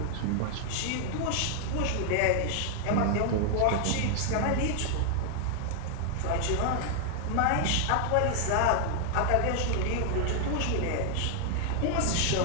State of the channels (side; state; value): both; different; correlation 0.00